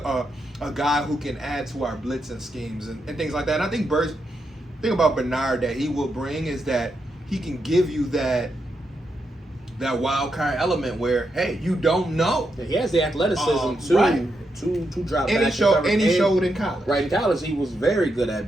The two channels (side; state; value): both; normal; correlation 0.83